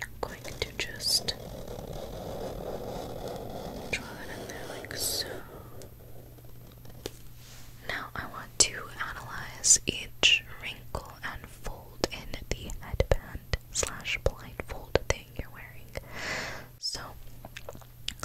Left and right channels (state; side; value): identical; both; correlation 1.00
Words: I'm going to just draw that in there like so. Now I want to analyze each wrinkle and fold in the headband slash blindfold thing you're wearing. So